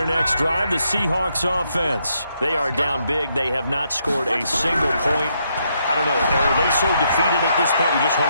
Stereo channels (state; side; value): inverted; both; correlation -0.76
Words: next drive, the Seahawks offense. They are down big. They have not scored a single point. I don't know. Are they so defeated at this point you just